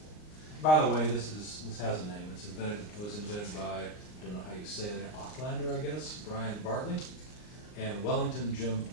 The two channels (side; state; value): right; late; 39 ms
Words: By the way, this has a name. It was invented by, I don't know how you say it, Aucklander, I guess, Brian Bartley, and Wellington Jim